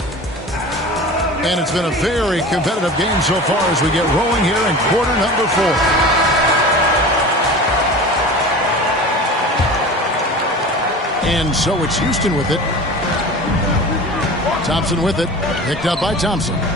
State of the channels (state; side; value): normal; both; correlation 0.36